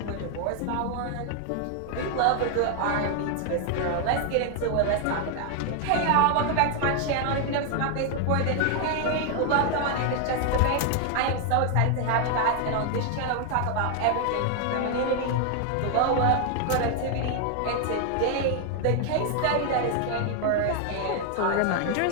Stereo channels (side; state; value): both; different; correlation 0.00